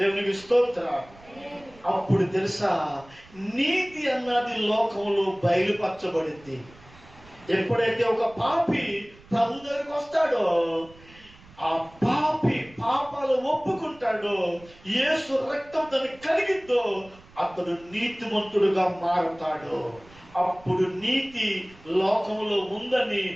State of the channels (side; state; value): right; noise; rumble, 24 dB below the sound